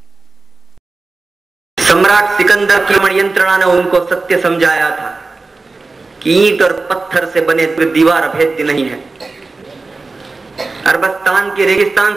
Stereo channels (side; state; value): left; quieter; 3.7 dB